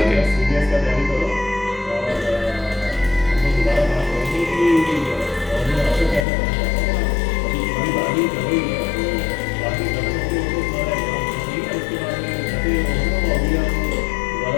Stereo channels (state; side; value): drops out; right; at 6.2 s